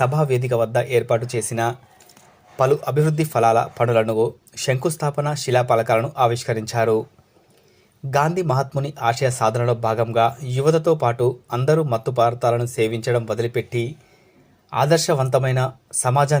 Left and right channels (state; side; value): identical; both; correlation 1.00